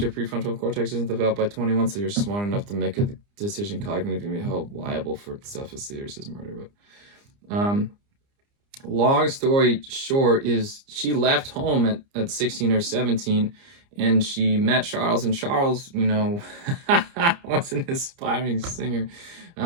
your prefrontal cortex isn't developed by 21, so you're smart enough to make a decision cognitively and be held liable for stuff as serious as murder. But long story short is she left home at 16 or 17, and she met Charles, and Charles, was an aspiring singer.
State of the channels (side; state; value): left; late; 30 ms